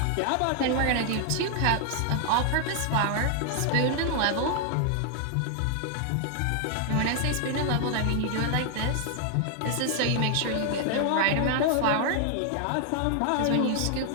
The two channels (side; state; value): both; different; correlation 0.00